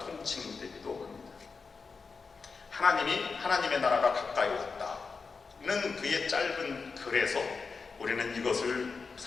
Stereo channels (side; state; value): right; quieter; 4.8 dB